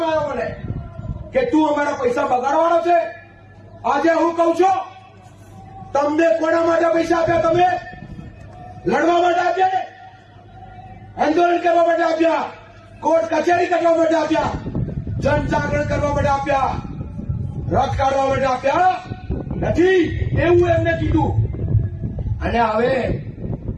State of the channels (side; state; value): both; identical; correlation 1.00